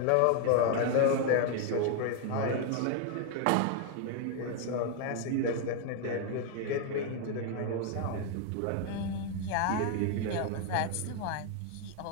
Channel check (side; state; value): both; different; correlation 0.01